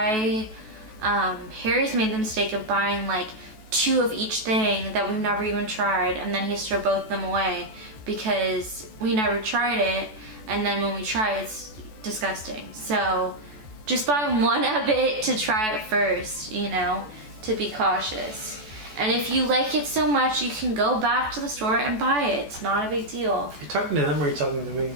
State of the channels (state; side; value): late; left; 14 ms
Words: made the mistake of buying like 2 of each thing that we've never even tried, and then he has to throw both of them away because we never tried it, and then when we try it, it's disgusting. So just buy one of it to try it first, you know, to be cautious. And if you like it so much, you can go back to the store and buy it. It's not a big deal. You're talking to them or are you talking to me?